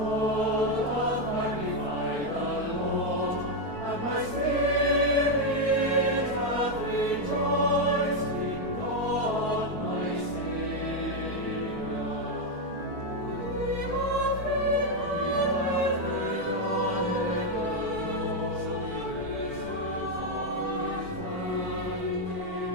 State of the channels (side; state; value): left; late; 4.5 ms